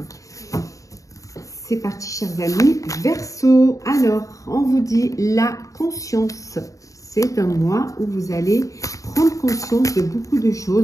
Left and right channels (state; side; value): late; right; 0.16 ms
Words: C'est parti, chers amis. Verseau, alors, on vous dit la conscience. C'est un mois où vous allez prendre conscience de beaucoup de